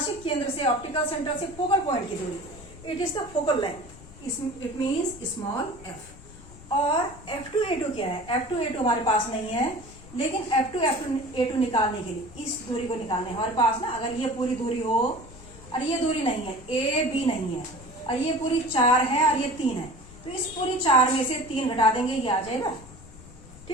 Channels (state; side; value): noise; left; rumble, 18 dB below the sound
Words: केंद्र से ऑप्टिकल सेंटर से फोकल पॉइंट की दूरी, it is the focal length, it means small f। और F2A2 क्या है, F2A2 हमारे पास नहीं है, लेकिन F2A2 निकालने के लिए इस दूरी को निकालने हमारे पास ना, अगर ये पूरी दूरी हो और ये दूरी नहीं है, AB नहीं है, और ये पूरी 4 है और ये 3 है, तो इस पूरी 4 में से 3 घटा देंगे, ये आ जाएगा।